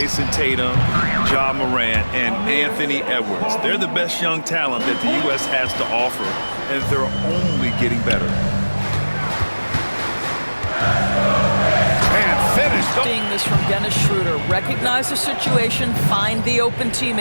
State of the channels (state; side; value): inverted; both; correlation -1.00